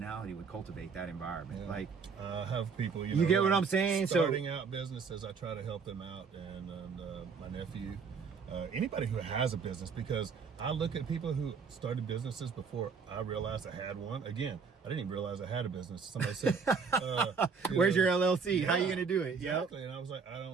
would cultivate that environment. Yeah. Like, have people, you get what I'm saying? Starting out businesses, I try to help them out, and my nephew, anybody who has a business, because I look at people who started businesses before I realized I had one. Again, I didn't even realize I had a business. Somebody said, "Where's your LLC? How are you gonna do it?" Exactly. Yep. And I was like, I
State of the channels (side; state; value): left; quieter; 5.6 dB